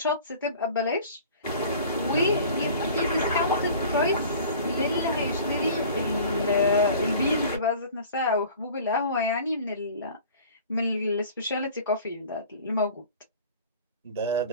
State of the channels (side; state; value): both; inverted; correlation -0.44